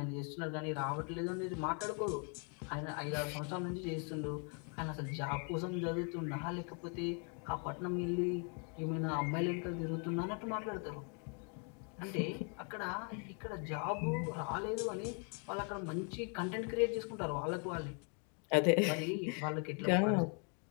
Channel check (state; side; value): quieter; right; 39.6 dB